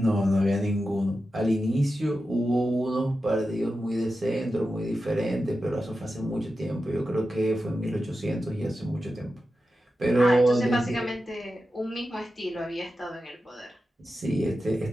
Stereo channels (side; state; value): both; normal; correlation 0.91